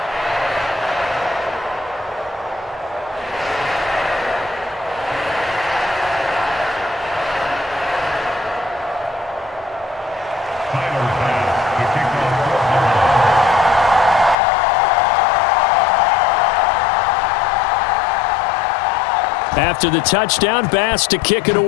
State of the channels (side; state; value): right; drops out; at 14.4 s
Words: After the touchdown, Bass to kick it